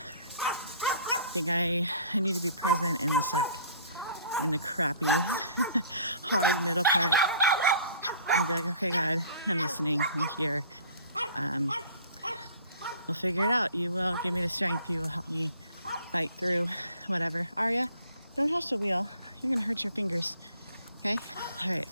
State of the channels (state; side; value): inverted; both; correlation -0.51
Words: I think I need to be present in the suck, in the crappy, hard middle part. And be like, okay, God, I'm listening, I'm here. We'll figure it out. You will give me the strength. You will help me fight through whatever. Arya, don't touch the wheel. You're gonna hurt your fingers. Okay? All right,